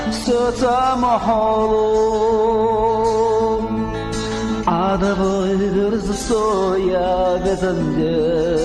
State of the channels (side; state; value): both; identical; correlation 1.00